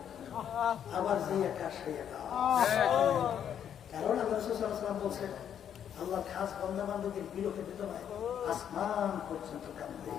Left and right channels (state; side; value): quieter; right; 9.1 dB